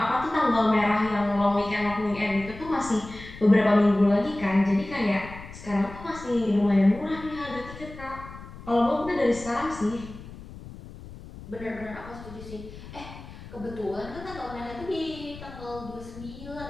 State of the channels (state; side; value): noise; left; rumble, 15 dB below the sound